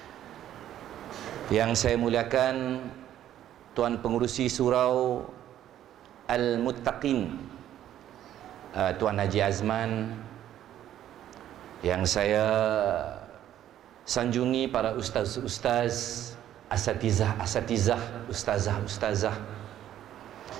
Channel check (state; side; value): quieter; left; 11.6 dB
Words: Yang saya muliakan Tuan Pengerusi Surau Al-Muttaqin, Tuan Haji Azman, yang saya sanjungi para ustaz-ustaz, asatizah, ustazah,